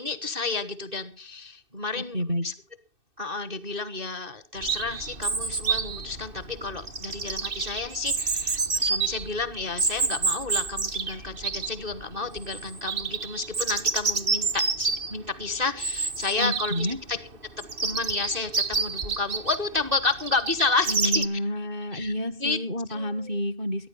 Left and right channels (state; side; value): late; left; 2.6 ms